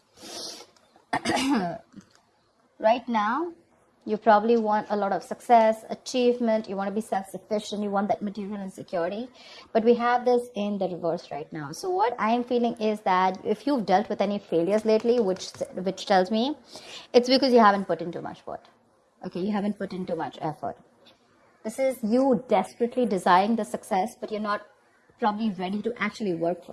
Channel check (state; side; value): identical; both; correlation 1.00